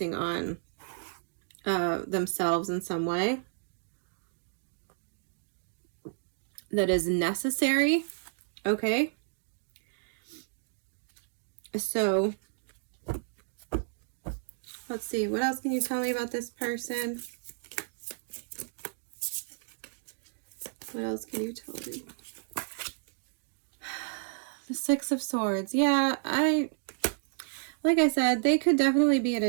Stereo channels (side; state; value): left; silent; digital silence